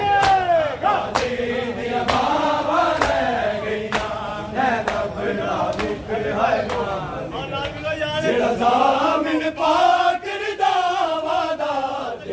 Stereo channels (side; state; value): both; identical; correlation 1.00